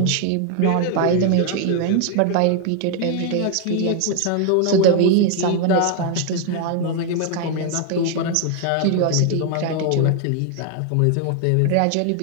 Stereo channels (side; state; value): both; different; correlation 0.01